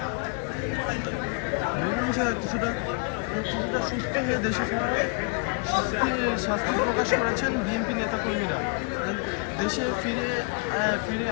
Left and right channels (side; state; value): right; quieter; 35.5 dB